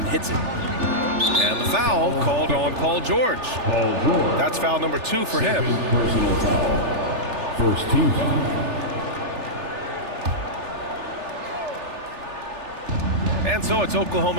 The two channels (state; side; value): late; left; 3.4 ms